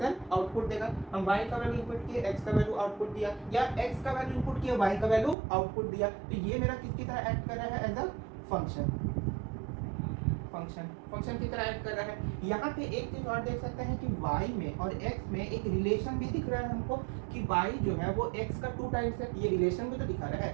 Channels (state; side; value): drops out; left; at 5.4 s